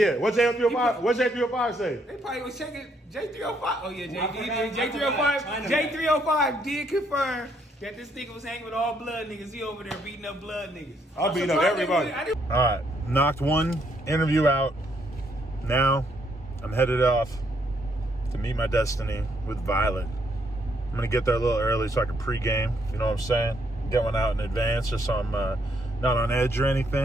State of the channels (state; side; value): normal; both; correlation 0.72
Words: what J305 say? They probably was checking J305. Oh yeah, J305 did confirm that this nigga was hanging with all blood niggas. He over there beating up blood niggas. I'll beat up everybody. All right, knocked one interview out. Now I'm headed off to meet my destiny with Violet. I'm gonna get there a little early so I can pregame. You know what I'm saying? Get one out in advance just so I'm not on edge or